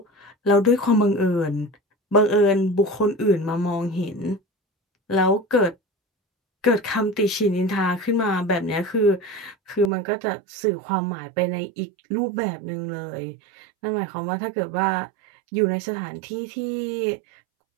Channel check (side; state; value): left; drops out; at 9.9 s